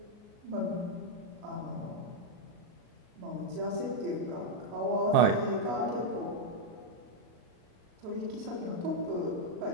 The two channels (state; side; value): late; left; 37 ms